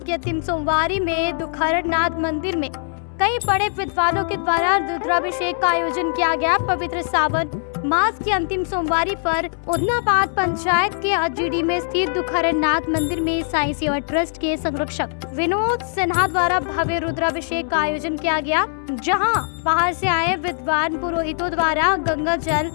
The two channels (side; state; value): right; silent; 65 dB below the other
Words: के अंतिम सोमवारी में दुखहरनाथ मंदिर में कई बड़े विद्वानों के द्वारा रुद्राभिषेक का आयोजन किया गया। पवित्र सावन मास की अंतिम सोमवारी पर उदनाबाद पंचायत के GD में स्थित दुखहरनाथ मंदिर में साईं सेवा ट्रस्ट के संरक्षक विनोद सिन्हा द्वारा भव्य रुद्राभिषेक का आयोजन किया गया, जहां बाहर से आए विद्वान पुरोहितों द्वारा गंगा जल,